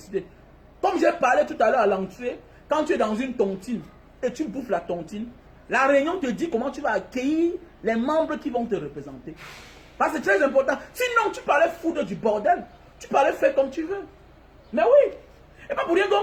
Comme j'ai parlé tout à l'heure à l'entrée, quand tu es dans une tontine et tu bouffes la tontine, la réunion te dit comment tu vas accueillir les membres qui vont te représenter. Parce que c'est très important. Sinon, tu parlais foutre du bordel. Tu parlais faire comme tu veux. Mais oui. Et pas pour rien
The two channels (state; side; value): identical; both; correlation 1.00